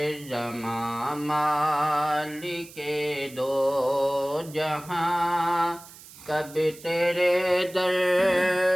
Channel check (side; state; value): right; noise; hiss, 19 dB below the sound